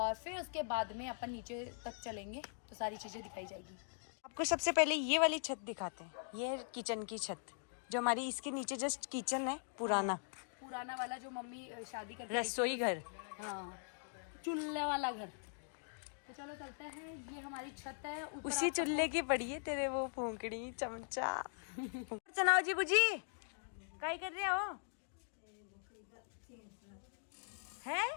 फिर उसके बाद में अपन नीचे तक चलेंगे तो सारी चीजें दिखाई जाएगी। आपको सबसे पहले ये वाली छत दिखाते हैं। ये है किचन की छत, जो हमारी इसके नीचे जस्ट किचन है, पुराना वाला जो मम्मी शादी करके रसोई घर, हाँ चूल्हे वाला घर। तो चलो चलते हैं, ये हमारी छत है। उसी चूल्हे की पड़ी है तेरे वो फूंकड़ी चमचा। चनाओ जी बुजी काय कर रहे हो है?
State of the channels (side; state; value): right; silent; digital silence